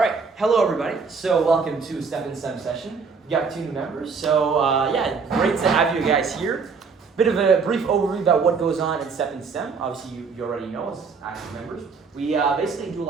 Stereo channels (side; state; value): left; quieter; 5.2 dB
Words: hello everybody. So welcome to Step STEM session. We got 2 new members. So great to have you guys here. Bit of a brief overview about what goes on in Step STEM. Obviously, you already know as active members. We basically do a